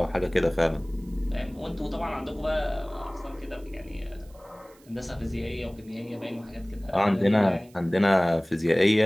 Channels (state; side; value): noise; right; hiss, 29 dB below the sound